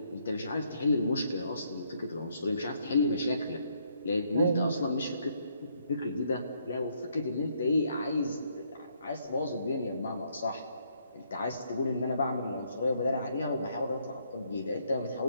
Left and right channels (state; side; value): inverted; both; correlation -0.71